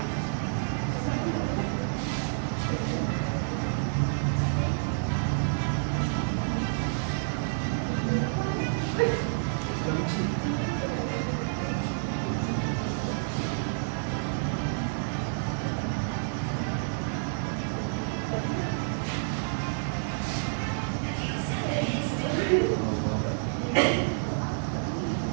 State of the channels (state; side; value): silent; left; digital silence